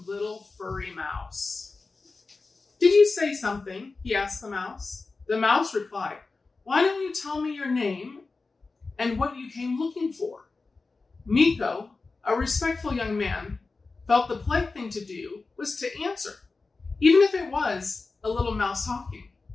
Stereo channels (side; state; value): right; quieter; 3.9 dB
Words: furry mouse. "Did you say something?" he asked the mouse. The mouse replied, "Why don't you tell me your name and what you came looking for?" Mikko, a respectful young man, felt the polite thing to do was to answer, even if it was a little mouse talking.